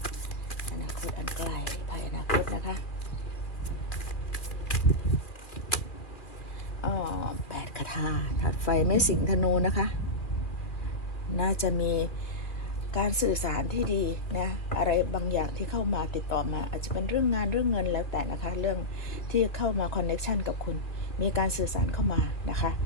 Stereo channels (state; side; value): late; right; 2.3 ms